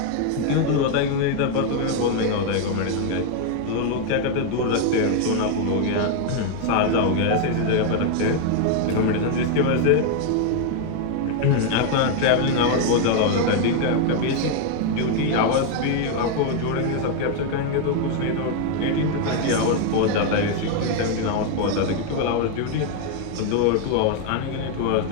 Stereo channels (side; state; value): both; different; correlation 0.01